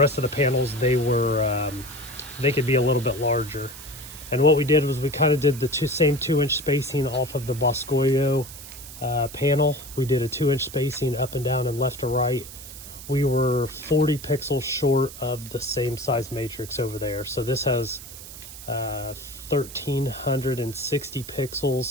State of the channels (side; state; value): right; noise; hiss, 14 dB below the sound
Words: of the panels, they could be a little bit larger. And what we did was we kind of did the same 2-inch spacing off of the Boscoio panel. We did a 2-inch spacing up and down and left to right. We were 40 pixels short of the same size matrix over there. So this has 1360